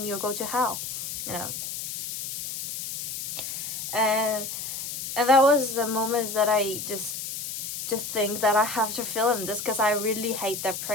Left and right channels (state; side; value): noise; left; hiss, 6 dB below the sound